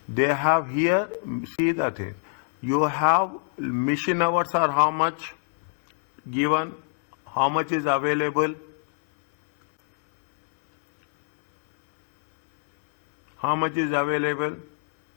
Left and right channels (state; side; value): silent; right; digital silence